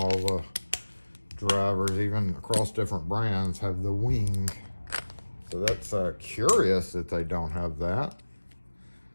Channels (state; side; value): inverted; both; correlation -1.00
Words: the drivers, even across different brands, have the wing. So that's curious that they don't have that.